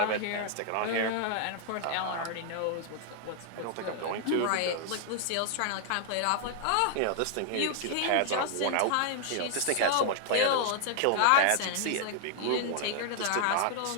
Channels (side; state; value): both; different; correlation 0.00